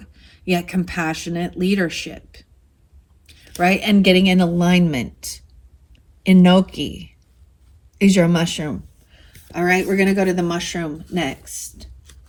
yet compassionate leadership, right? And getting in alignment. Enoki is your mushroom. All right, we're going to go to the mushroom next.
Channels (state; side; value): identical; both; correlation 1.00